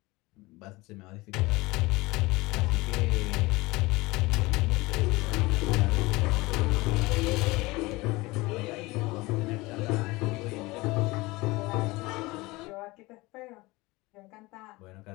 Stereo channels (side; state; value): right; quieter; 22.0 dB